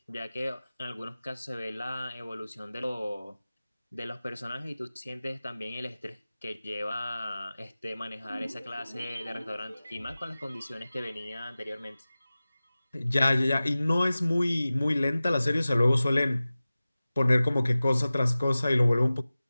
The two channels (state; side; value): inverted; both; correlation -0.97